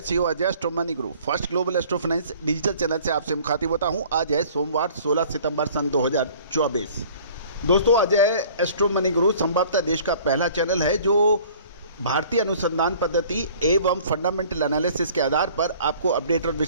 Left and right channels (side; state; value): both; inverted; correlation -0.51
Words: CO Ajay astro money group first global astro finance digital channel से आपसे मुखातिब होता हूं। आज है सोमवार 16 सितंबर सन 2024। दोस्तों अजय एस्ट्रो मनी ग्रुप संभवतः देश का पहला चैनल है जो भारतीय अनुसंधान पद्धति एवं फंडामेंटल एनालिसिस के आधार पर आपको अपडेट और